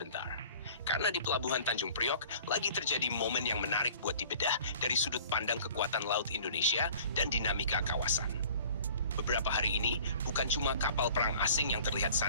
Karena di Pelabuhan Tanjung Priok lagi terjadi momen yang menarik buat dibedah dari sudut pandang kekuatan laut Indonesia dan dinamika kawasan. Beberapa hari ini, bukan cuma kapal perang asing yang terlihat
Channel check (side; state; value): both; inverted; correlation -0.47